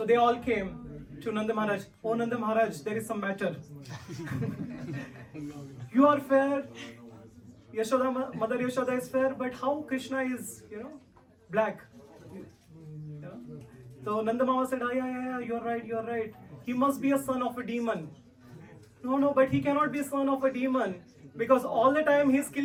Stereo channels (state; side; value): identical; both; correlation 1.00